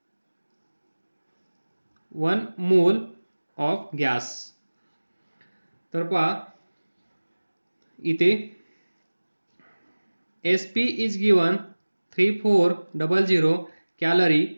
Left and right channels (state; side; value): inverted; both; correlation -1.00